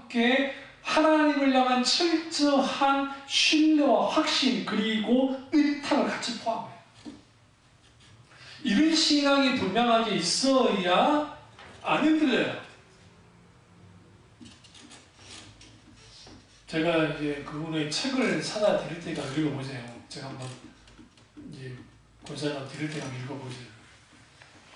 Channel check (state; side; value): identical; both; correlation 1.00